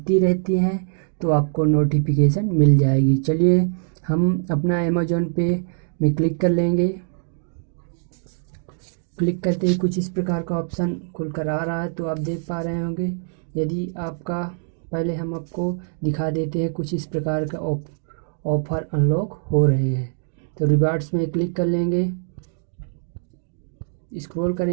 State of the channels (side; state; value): left; silent; digital silence